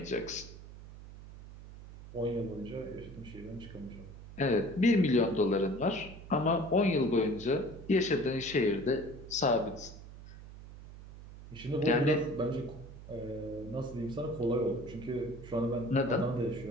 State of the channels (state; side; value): noise; right; hum, 15 dB below the sound